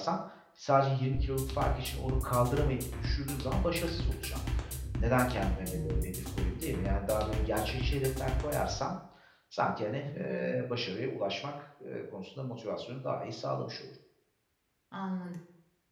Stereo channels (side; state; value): both; identical; correlation 1.00